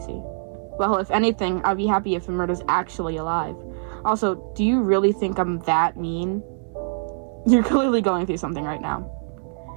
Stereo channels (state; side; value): silent; left; 63 dB below the other